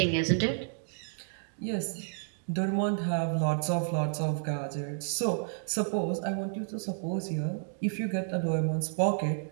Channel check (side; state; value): left; silent; digital silence